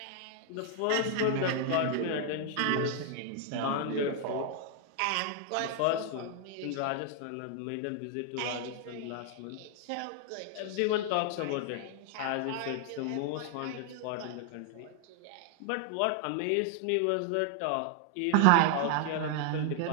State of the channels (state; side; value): different; both; correlation 0.00